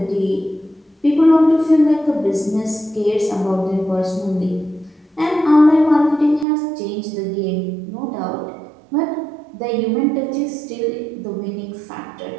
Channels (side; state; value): left; drops out; at 6.5 s